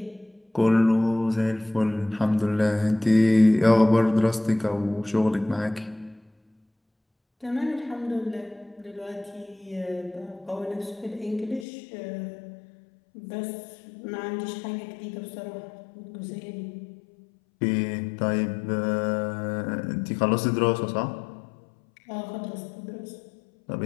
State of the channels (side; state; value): right; drops out; at 11.7 s